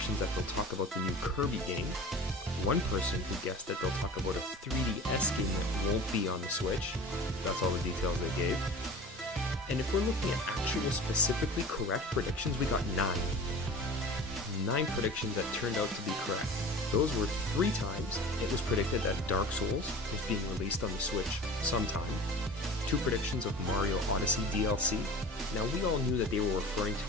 that they'll talk about the new Kirby game, 1 person who guessed that they'll talk about a 3DS game that won't be on the Switch. That's all the details they gave. And if we're looking at actual specifically correct predictions, we got 9. 9 predictions that turned out to be correct. Those were 3 times it was predicted that Dark Souls was being released on the Switch sometime. 2 predictions of Mario Odyssey DLC. Now, we all knew that they were referring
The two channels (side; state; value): both; normal; correlation 0.38